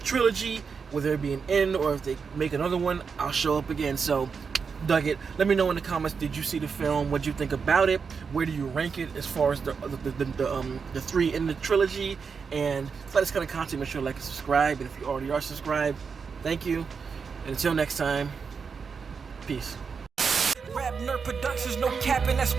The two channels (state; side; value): quieter; left; 5.7 dB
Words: trilogy. Whether it be an end or if they make another one, I'll show up again. So, dug it. Let me know in the comments, did you see the film? What do you think about it? Where do you rank it as far as the three in the trilogy? And for this kind of content, make sure to like and subscribe. And if you already are subscribed, thank you. And until next time, peace. RapNerd Productions, no capping, that's